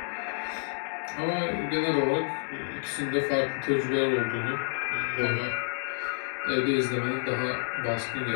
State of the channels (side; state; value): right; silent; digital silence